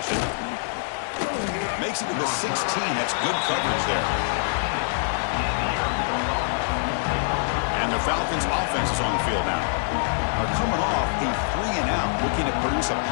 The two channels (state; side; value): silent; right; 62 dB below the other